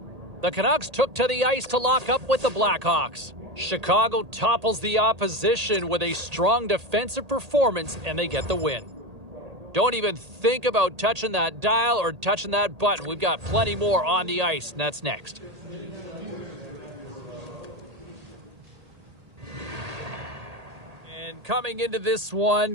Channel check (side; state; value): left; late; 1.8 ms